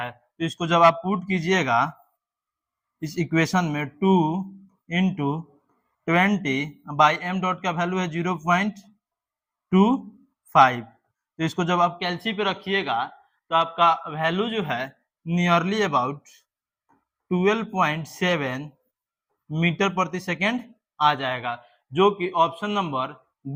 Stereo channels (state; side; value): identical; both; correlation 1.00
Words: तो इसको जब आप पुट कीजिएगा इस इक्वेशन में 2 इंटू 20 बाई m डॉट का वैल्यू है 0.25। तो इसको जब आप कैलसी पे रखिएगा तो आपका वैल्यू जो है नियरली अबाउट 12.7 मीटर प्रति सेकेंड आ जाएगा, जो कि ऑप्शन नंबर